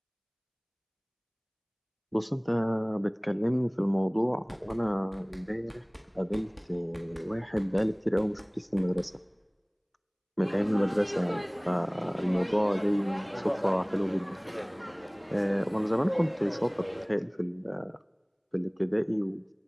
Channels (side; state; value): both; identical; correlation 1.00